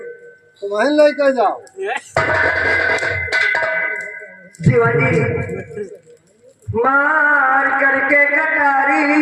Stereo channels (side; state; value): both; identical; correlation 1.00